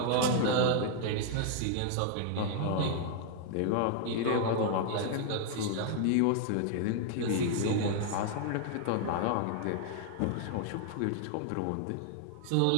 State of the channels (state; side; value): different; both; correlation 0.00